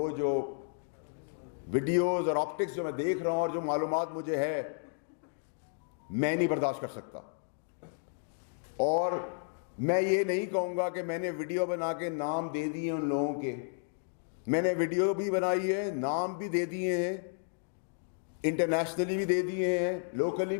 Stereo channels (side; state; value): right; silent; digital silence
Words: جو ویڈیوز اور آپٹکس جو میں دیکھ رہا ہوں اور جو معلومات مجھے ہے، میں نہیں برداشت کر سکتا. اور میں یہ نہیں کہوں گا کہ میں نے ویڈیو بنا کے نام دے دیے ان لوگوں کے. میں نے ویڈیو بھی بنائی ہے، نام بھی دے دیے ہیں، انٹرنیشنلی بھی دے دیے ہیں، لوکلی